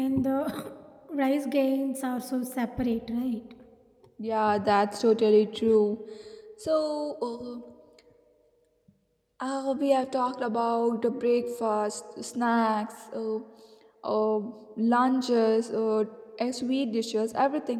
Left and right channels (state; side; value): identical; both; correlation 1.00